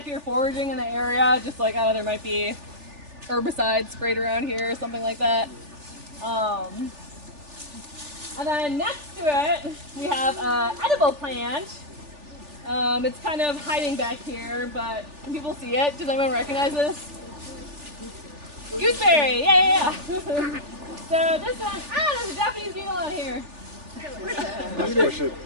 you're foraging in the area, just like, oh, there might be herbicides sprayed around here or something like that. And then next to it, we have an edible plant. It's kind of hiding back here, but can people see it? Does anyone recognize this? Gooseberry, yeah. So this one, there's a Japanese beetle on here. Let's push it.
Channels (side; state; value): left; late; 3.4 ms